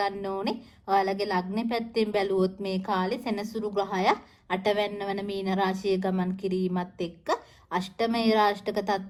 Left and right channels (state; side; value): identical; both; correlation 1.00